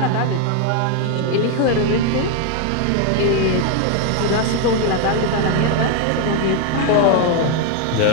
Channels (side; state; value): both; different; correlation 0.01